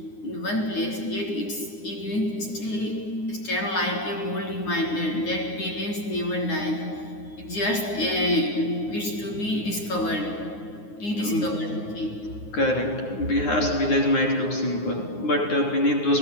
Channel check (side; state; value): right; late; 9.6 ms